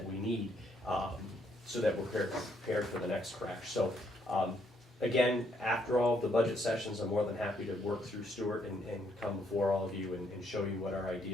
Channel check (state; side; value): normal; both; correlation 0.71